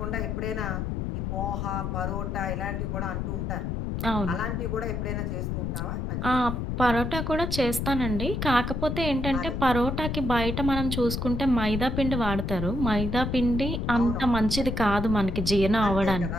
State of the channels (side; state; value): left; noise; rumble, 2 dB below the sound